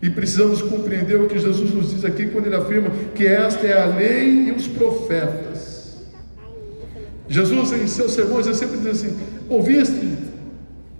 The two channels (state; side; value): inverted; both; correlation -1.00